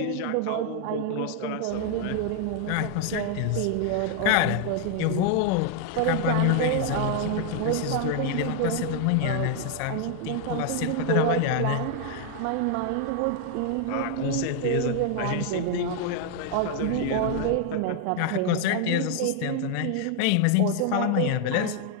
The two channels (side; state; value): both; different; correlation 0.00